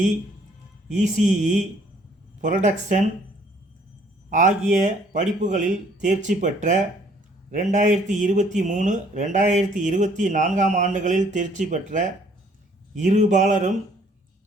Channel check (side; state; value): both; normal; correlation 0.61